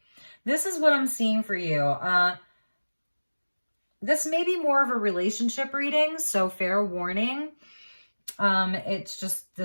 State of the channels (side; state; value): both; inverted; correlation -1.00